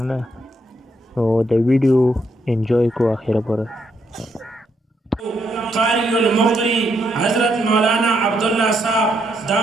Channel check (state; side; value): normal; both; correlation 0.76